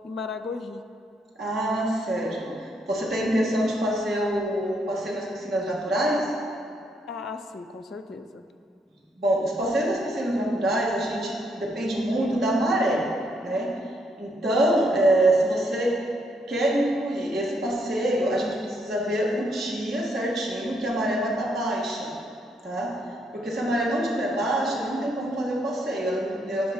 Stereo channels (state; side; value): normal; both; correlation 0.74